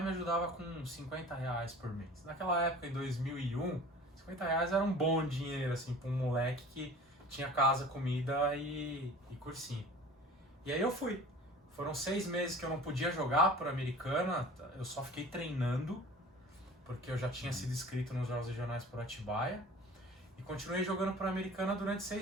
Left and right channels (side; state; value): both; normal; correlation 0.43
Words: me ajudava com R$50 por mês. Naquela época, em 2001, R$50 era um bom dinheiro, assim, pra um moleque que tinha casa, comida e cursinho. E aí eu fui. Foram 6 meses que eu não podia jogar por Americana, eu só fiquei treinando, porque eu já tinha sido inscrito nos Jogos Regionais por Atibaia. E continuei jogando por Americana durante